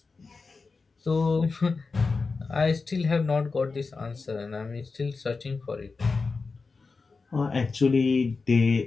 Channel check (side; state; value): right; quieter; 4.3 dB